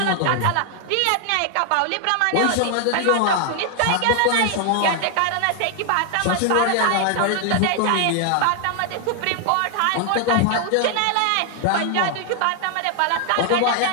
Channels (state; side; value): different; both; correlation 0.00